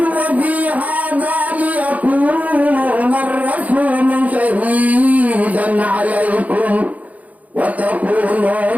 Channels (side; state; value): left; late; 0.074 ms